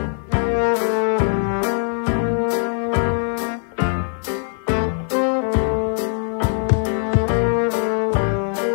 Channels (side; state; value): right; silent; 58 dB below the other